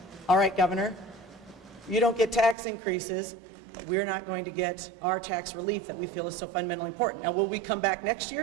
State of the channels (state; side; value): drops out; left; at 2.6 s